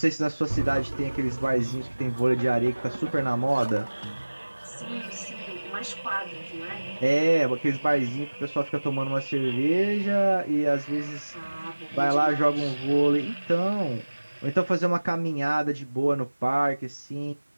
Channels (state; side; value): inverted; both; correlation -1.00